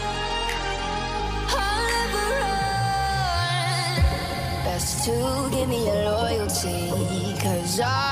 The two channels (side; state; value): both; identical; correlation 1.00